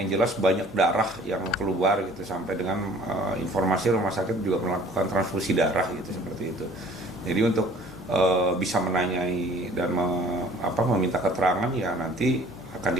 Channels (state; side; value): normal; both; correlation 0.52